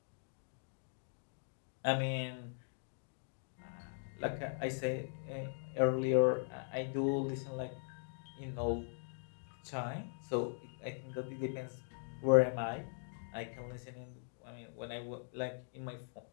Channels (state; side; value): silent; right; digital silence